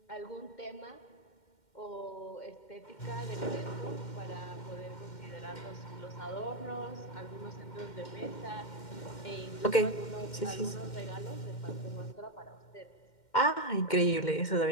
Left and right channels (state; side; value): late; right; 2.1 ms